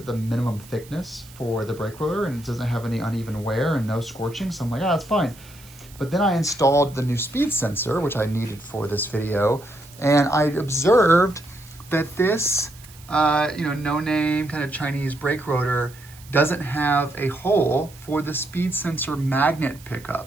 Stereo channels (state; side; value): noise; right; hiss, 22 dB below the sound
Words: the minimum thickness for the brake rotor and it doesn't have any uneven wear and no scorching. So I'm like, that's fine. But then I installed the new speed sensor, which I needed for this video. And I observed that this, no name kind of Chinese brake rotor doesn't have a hole for the speed sensor magnet